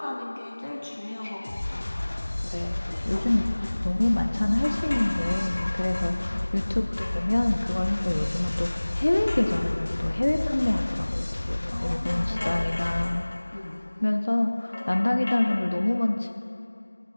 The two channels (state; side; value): inverted; both; correlation -1.00